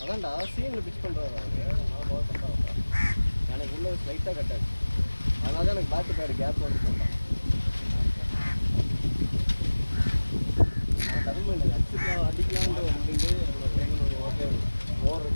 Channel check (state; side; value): inverted; both; correlation -1.00